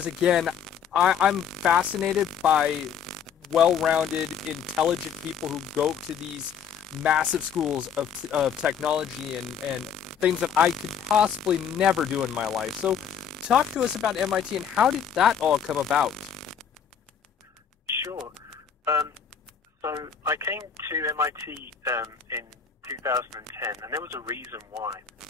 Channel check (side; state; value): right; quieter; 7.7 dB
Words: again, I'm fascinated by well-rounded, intelligent people who go to these massive schools of technology and things that I could possibly never do in my life. So talk to us about MIT and how did that all come about? Sure. So I came to MIT in 2010, and there was a reason why.